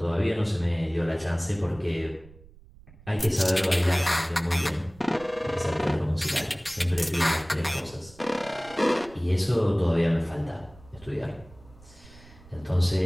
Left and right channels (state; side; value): noise; right; rumble, 23 dB below the sound